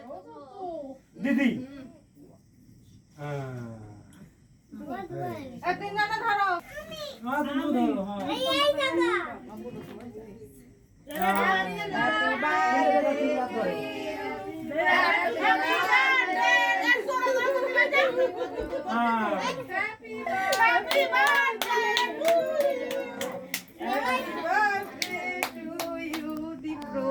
দিদি তিনজনে ধরো। হ্যাঁ তুমি ধরো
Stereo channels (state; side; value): identical; both; correlation 1.00